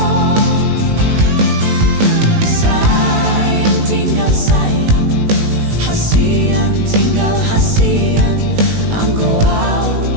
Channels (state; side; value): late; left; 18 ms